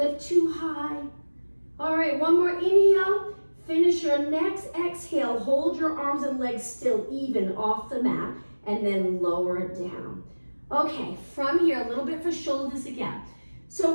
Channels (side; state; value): both; inverted; correlation -1.00